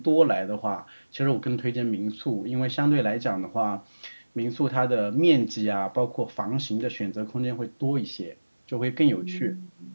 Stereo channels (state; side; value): inverted; both; correlation -1.00